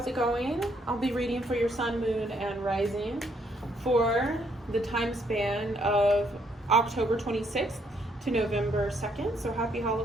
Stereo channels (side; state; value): both; normal; correlation 0.71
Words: it going? I'll be reading for your sun, moon, and rising for the time span of October 26th to November 2nd. So happy